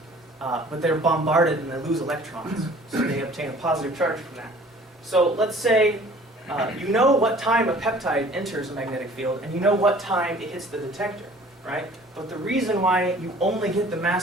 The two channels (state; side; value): normal; both; correlation 0.51